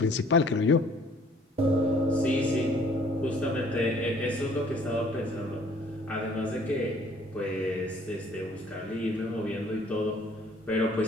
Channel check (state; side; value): normal; both; correlation 0.58